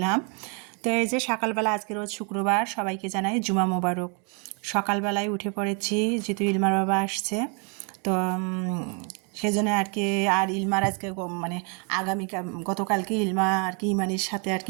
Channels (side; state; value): left; quieter; 36.8 dB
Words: তো এই যে সকালবেলা, আজকে রোজ শুক্রবার, সবাইকে জানাই জুমা মোবারক। সকালবেলায় উঠে পড়েছি, যেহেতু ইলমার বাবা আসছে, তো সেজন্য আর কি। আর ইলমার আজকে মানে গতকালকে ইলমা আর কি ইমানের সাথে আর